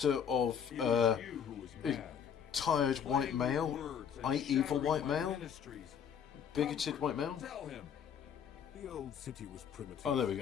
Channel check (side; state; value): right; quieter; 7.8 dB